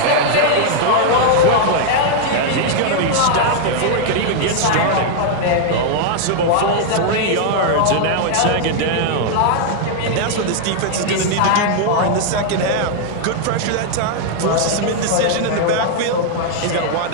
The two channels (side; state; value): both; different; correlation 0.00